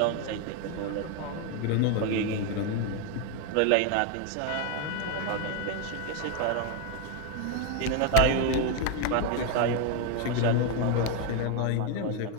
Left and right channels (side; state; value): both; different; correlation 0.01